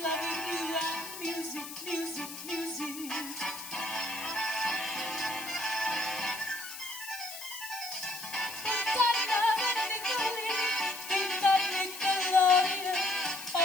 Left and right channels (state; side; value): noise; left; hiss, 11 dB below the sound